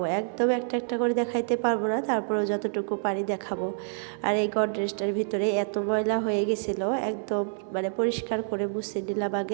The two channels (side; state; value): left; silent; 57 dB below the other